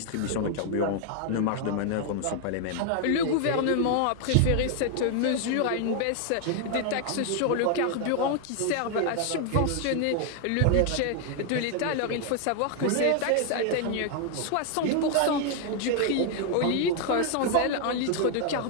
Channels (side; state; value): both; different; correlation 0.00